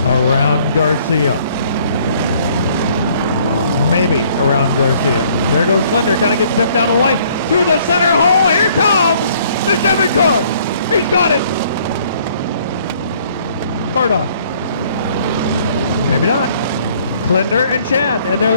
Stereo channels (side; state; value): both; inverted; correlation -0.61